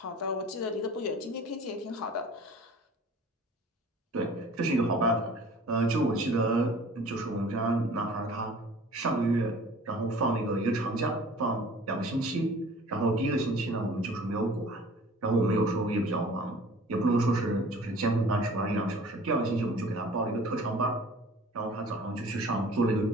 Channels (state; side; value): normal; both; correlation 0.47